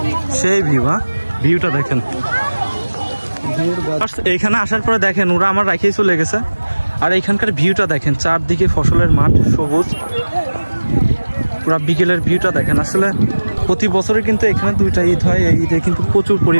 সেই ভিউ। হ্যাঁ, ভিউটা দেখেন। এইখানে আসার পরে দেখেন ওরা আমার রাখিয়ে চলে গেছে। আর এইখানকার ভিউটা দেখেন, চারদিকে ফসলের মাঠ, সবুজ, পুরা বিকেলের ভিউটা দেখেন। আসলে প্রতি বছরে কিন্তু এখানে 2টা ঈদ হয়, এই ঈদে কিন্তু প্রচুর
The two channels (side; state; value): both; inverted; correlation -1.00